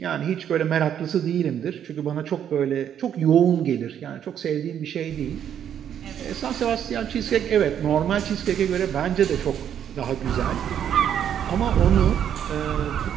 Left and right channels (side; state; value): left; quieter; 9.4 dB